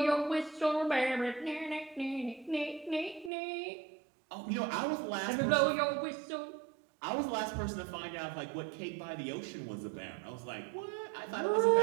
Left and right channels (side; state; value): left; drops out; at 3.3 s